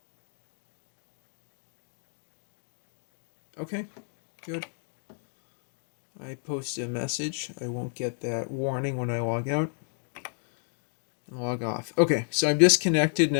Okay, good. I post a message. I won't get that warning when I log out. And log off. Okay, so I'm disconnected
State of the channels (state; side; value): silent; right; 57 dB below the other